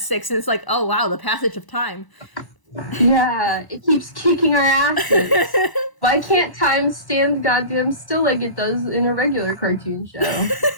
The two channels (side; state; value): right; late; 1.0 ms